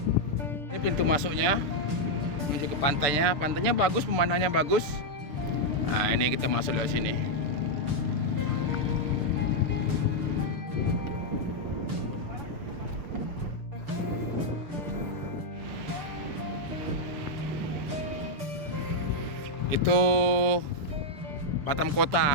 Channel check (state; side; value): late; left; 6.7 ms